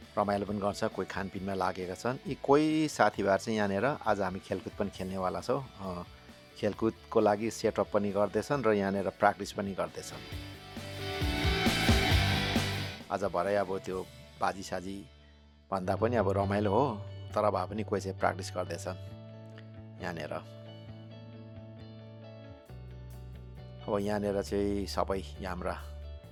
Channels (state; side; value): identical; both; correlation 1.00